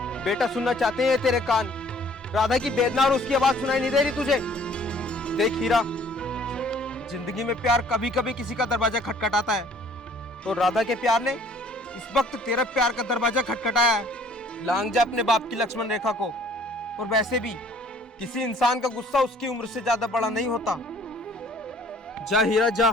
बेटा सुनना चाहते हैं तेरे कान। राधा की वेदना और उसकी आवाज सुनाई नहीं दे रही तुझे? देख हीरा, जिंदगी में प्यार कभी कभी किसी का दरवाजा खटखटाता है, तो राधा के प्यार ने इस वक्त तेरा प्यार का दरवाजा खटखटाया है। लांग जा अपने बाप की लक्ष्मण रेखा को। और वैसे भी किसी इंसान का गुस्सा उसकी उम्र से ज्यादा बड़ा नहीं होता। जा हीरा,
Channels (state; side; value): normal; both; correlation 0.56